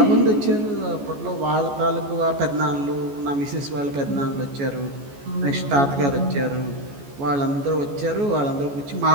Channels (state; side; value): late; left; 14 ms